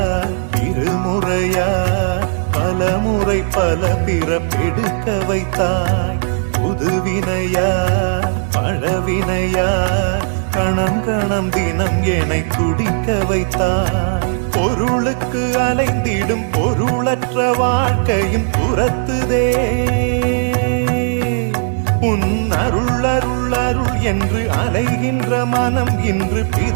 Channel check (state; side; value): silent; left; digital silence